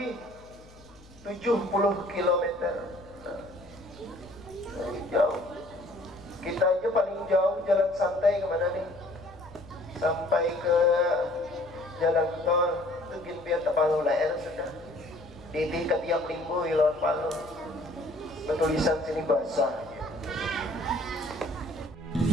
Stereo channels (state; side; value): noise; left; hum, 24 dB below the sound